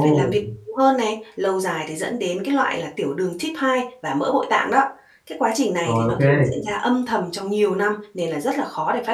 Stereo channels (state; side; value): identical; both; correlation 1.00